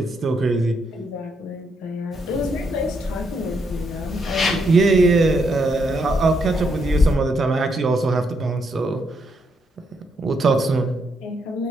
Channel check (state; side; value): normal; both; correlation 0.77